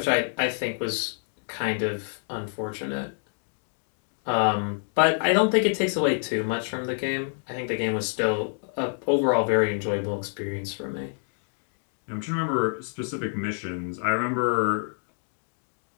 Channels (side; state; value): right; silent; 60 dB below the other